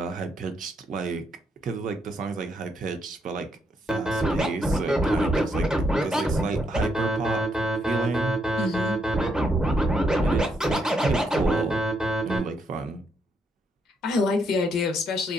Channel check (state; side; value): normal; both; correlation 0.76